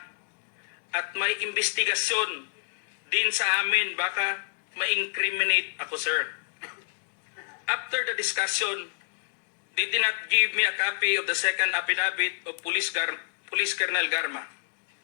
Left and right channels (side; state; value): right; silent; digital silence